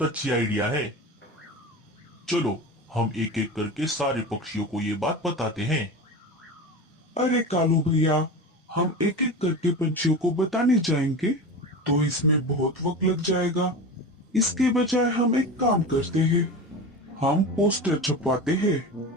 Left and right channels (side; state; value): both; normal; correlation 0.28